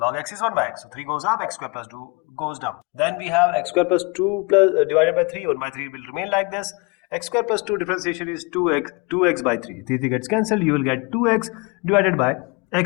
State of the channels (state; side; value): quieter; right; 29.5 dB